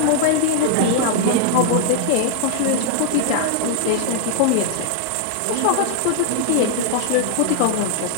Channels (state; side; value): different; both; correlation -0.01